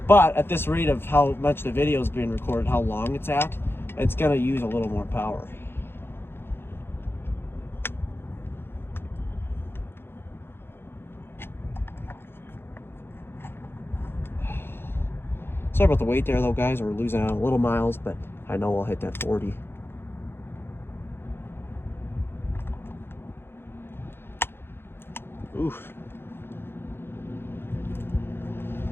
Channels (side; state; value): right; late; 0.11 ms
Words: But at this rate of how much the video is being recorded, how long it's at, it's gonna use a little more power. Sorry about the wait there though, guys. We're losing out a little miles, but I know we'll hit that 40. Oof.